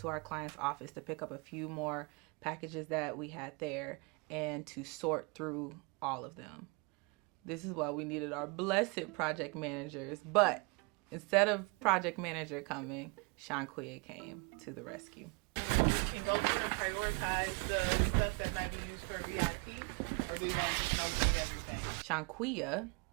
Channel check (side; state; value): left; quieter; 31.5 dB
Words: our client's office to pick up a few more packages that we had there and to sort through all of them. This is why we needed our blessed project managers, but instead of project manager coming, Shanquia came to the rescue. Can go through and prioritize the stuff that might be used for VIP, or do you want to just know everything? Shanquia